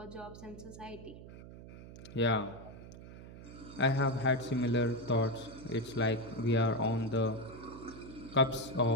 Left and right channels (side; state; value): right; noise; hum, 15 dB below the sound